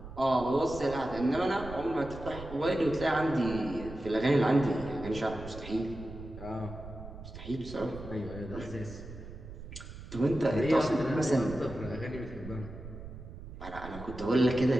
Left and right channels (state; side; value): noise; right; rumble, 13 dB below the sound